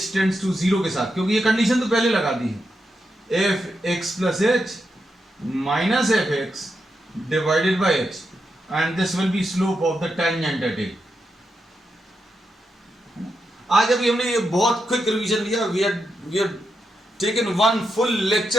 टेंड्स टू 0 के साथ, क्योंकि ये कंडीशन तो पहले लगा दी है, fx plus h minus fx divided by h, and this will be slope of the tangent at a। आज अभी हमने ये बहुत क्विक रिवीजन लिया, we have taken one full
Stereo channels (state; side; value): normal; both; correlation 0.85